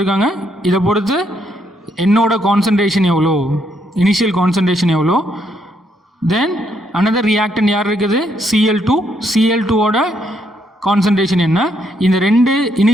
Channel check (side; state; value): both; normal; correlation 0.74